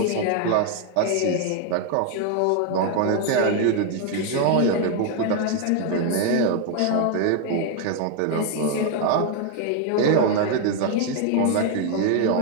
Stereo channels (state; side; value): different; both; correlation 0.01